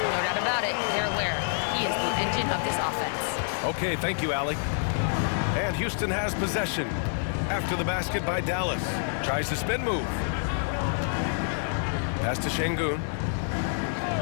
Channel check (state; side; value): silent; right; 60 dB below the other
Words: No doubt about it, they're aware. He is the engine of this offense. Okay, thank you, Allie. And Houston has possession. After the basket by Dallas. Tries the spin move. Pass to Şengün.